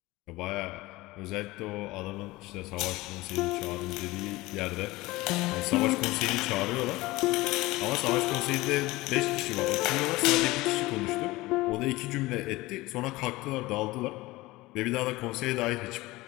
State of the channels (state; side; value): quieter; right; 20.1 dB